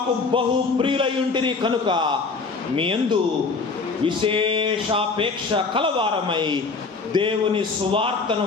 బహు ప్రియులై ఉంటిరి కనుక మీ యందు విశేషాపేక్ష కలవారమై దేవుని సువార్తను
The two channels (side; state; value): right; quieter; 4.3 dB